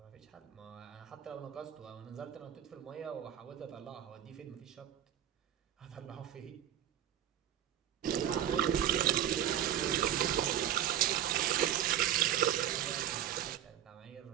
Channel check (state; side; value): quieter; left; 10.8 dB